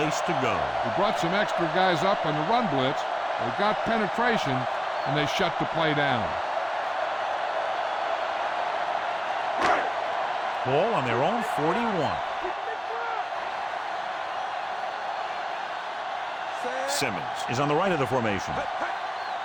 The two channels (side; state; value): both; identical; correlation 1.00